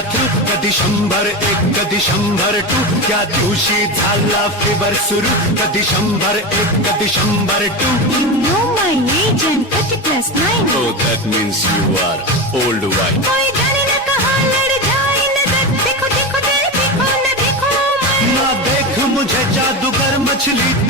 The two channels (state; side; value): normal; both; correlation 0.20